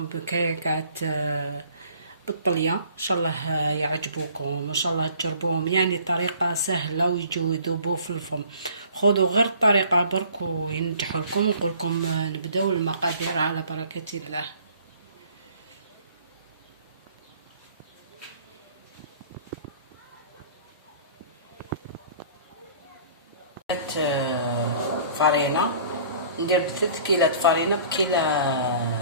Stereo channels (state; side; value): inverted; both; correlation -0.51